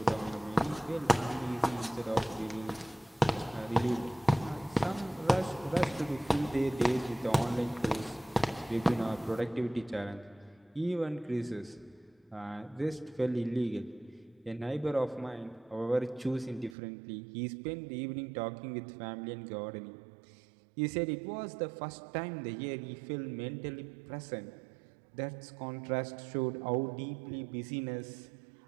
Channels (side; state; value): left; drops out; at 16.8 s